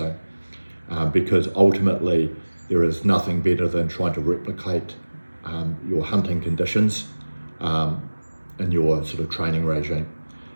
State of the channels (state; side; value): inverted; both; correlation -1.00